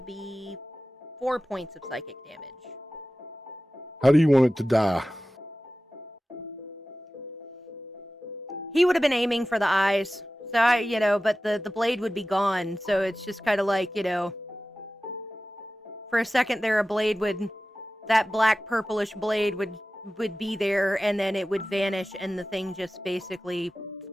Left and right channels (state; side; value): normal; both; correlation 0.95